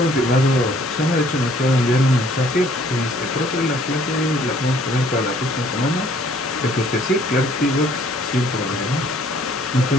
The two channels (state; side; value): normal; both; correlation 0.60